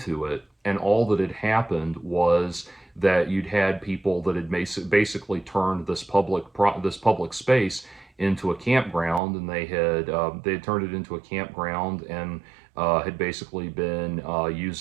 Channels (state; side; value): drops out; left; at 9.2 s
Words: it, and all that had happened was that you'd had people that had basically turned this public space into a campground, and they had turned it into a campground, and had basically been